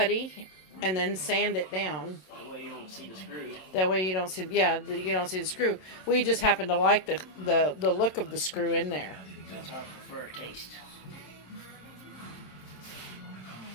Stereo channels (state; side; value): late; right; 27 ms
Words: and then sand it down. That way you don't see the screw. That way you don't see, you don't see the screw. We just happen to like the look of the screw in there. That's our preferred taste.